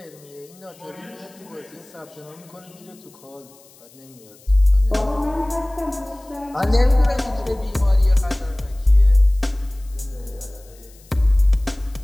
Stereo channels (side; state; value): left; noise; hiss, 26 dB below the sound